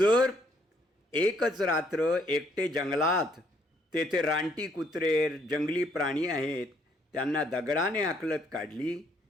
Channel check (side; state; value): both; normal; correlation 0.68